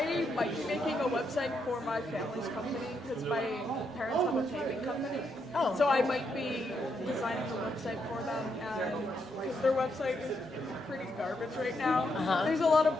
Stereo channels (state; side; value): normal; both; correlation 0.79